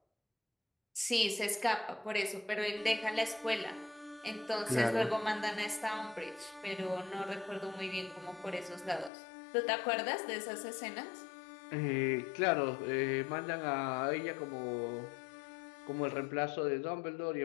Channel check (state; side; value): drops out; right; at 9.1 s